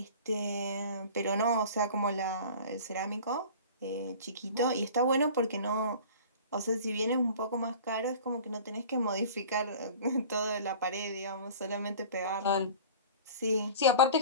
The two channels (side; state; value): both; inverted; correlation -0.41